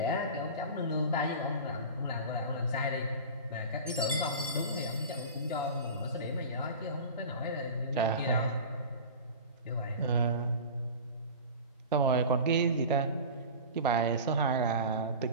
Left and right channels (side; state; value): both; inverted; correlation -0.33